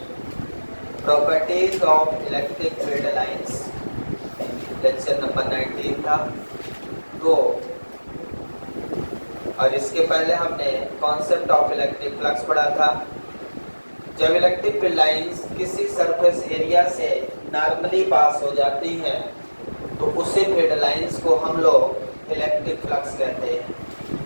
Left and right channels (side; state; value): both; inverted; correlation -1.00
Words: properties of electric field lines, lecture number 19 था। तो और इसके पहले हमने कॉन्सेप्ट ऑफ इलेक्ट्रिक फ्लक्स पढ़ा था। जब इलेक्ट्रिक फील्ड लाइंस किसी सरफेस एरिया से नॉर्मली पास हो जाती हैं तो उसी फील्ड लाइंस को हम लोग इलेक्ट्रिक फ्लक्स कहते हैं।